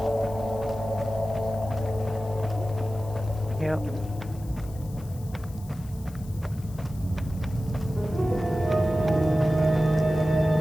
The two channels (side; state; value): left; noise; hiss, 23 dB below the sound